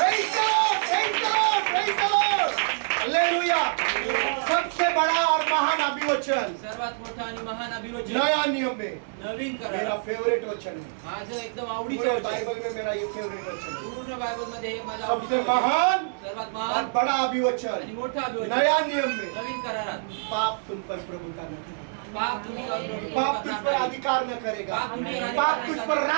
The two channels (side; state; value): left; silent; digital silence